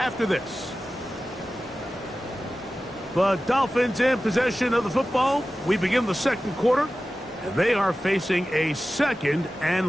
this. The Dolphins in possession of the football. We begin the second quarter, and they are facing a second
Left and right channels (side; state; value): both; normal; correlation 0.95